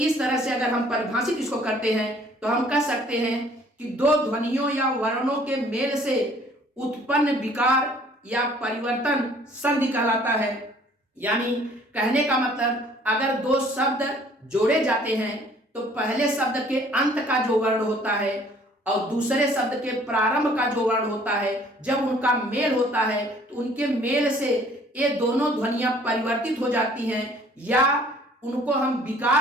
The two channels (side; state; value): both; normal; correlation 0.56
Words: तरह से अगर हम परिभाषित इसको करते हैं तो हम कह सकते हैं कि दो ध्वनियों या वर्णों के मेल से उत्पन्न विकार या परिवर्तन संधि कहलाता है। यानी कहने का मतलब अगर दो शब्द जोड़े जाते हैं तो पहले शब्द के अंत का जो वर्ण होता है और दूसरे शब्द के प्रारंभ का जो वर्ण होता है, जब उनका मेल होता है तो उनके मेल से ये दोनों ध्वनियां परिवर्तित हो जाती हैं या उनको हम